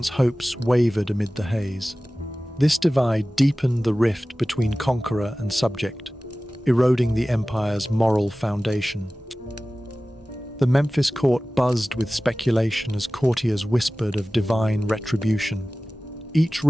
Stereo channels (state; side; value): normal; both; correlation 0.97